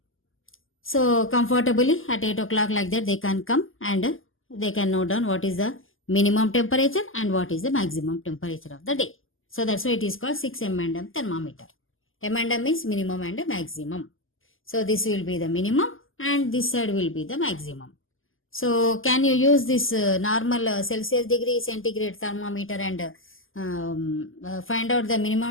so comfortably at 8 o'clock like that, they can come and they can note down what is the minimum temperature and what is the maximum temperature of the day. So that's why it is called 6 M&M thermometer. M&M is minimum and maximum. So this will be the minimum and this side will be the maximum. So can you use this normal Celsius degree centigrade thermometer and find out the minimum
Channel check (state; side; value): late; right; 0.59 ms